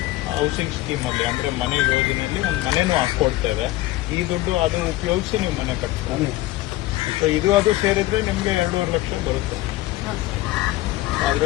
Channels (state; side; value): quieter; right; 17.5 dB